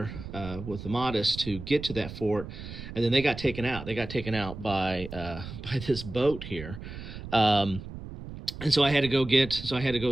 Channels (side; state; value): right; noise; rumble, 11 dB below the sound